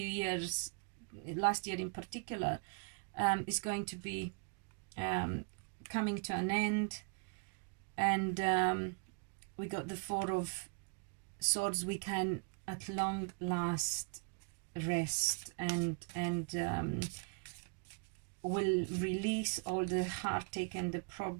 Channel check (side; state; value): left; quieter; 36.9 dB